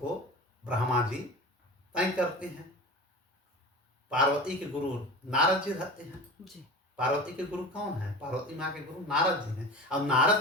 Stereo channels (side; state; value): both; normal; correlation 0.33